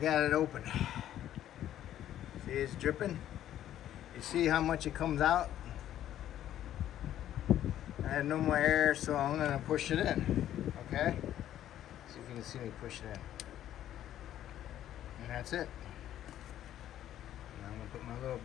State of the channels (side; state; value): right; quieter; 11.8 dB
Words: it open. See, it's dripping. You see how much it comes out? I had no more air, so I'm gonna push it in. Okay? See if you can see me push it in. And that's it. Now I'm gonna put my little